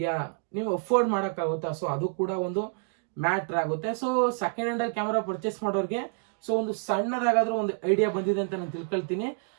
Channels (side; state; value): left; silent; 59 dB below the other